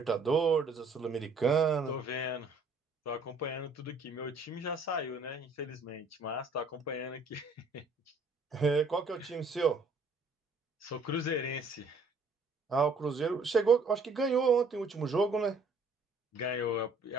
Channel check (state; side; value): quieter; left; 3.6 dB